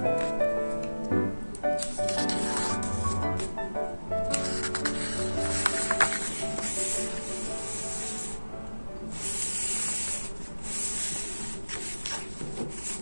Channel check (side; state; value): both; inverted; correlation -1.00